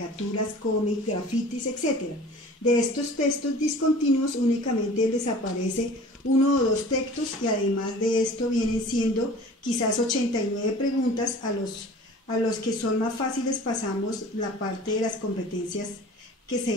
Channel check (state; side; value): normal; both; correlation 0.44